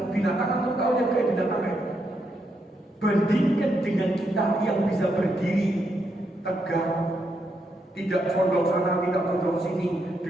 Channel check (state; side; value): normal; both; correlation 0.80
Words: binatang, atau tahu yang kayak binatang ya? Bandingkan dengan kita yang bisa berdiri tegak, tidak condong sana, tidak condong sini,